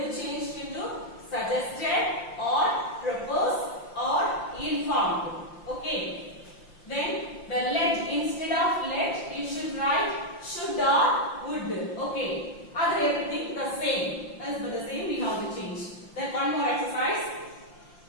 to change into suggested or proposed or informed. Okay. Then the let, instead of let you should write should or would. Okay. Other everything the same. As for the same we have to change. Then one more exercise.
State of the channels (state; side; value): late; right; 5.8 ms